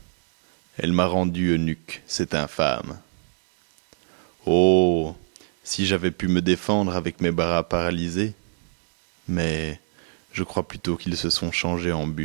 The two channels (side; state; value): left; silent; digital silence